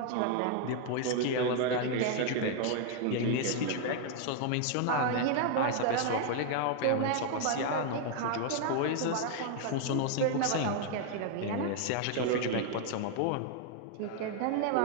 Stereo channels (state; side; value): different; both; correlation 0.00